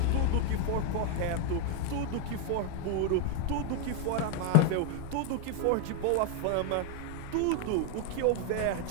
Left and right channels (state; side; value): different; both; correlation 0.00